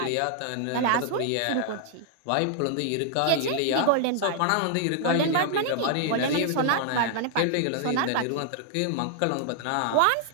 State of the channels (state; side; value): different; both; correlation 0.00